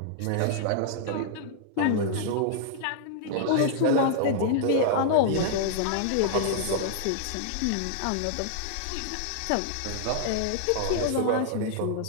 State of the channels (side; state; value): both; different; correlation -0.01